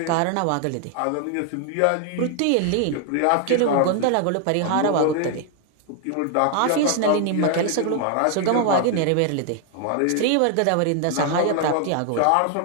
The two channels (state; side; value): different; both; correlation 0.00